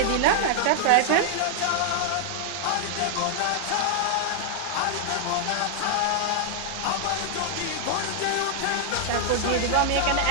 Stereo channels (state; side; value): different; both; correlation 0.00